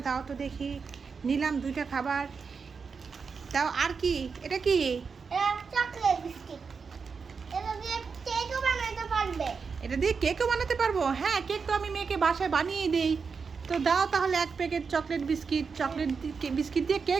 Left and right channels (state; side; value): quieter; left; 5.4 dB